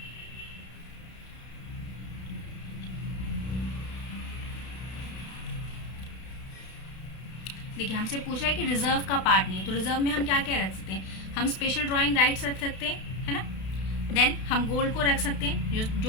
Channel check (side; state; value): right; late; 32 ms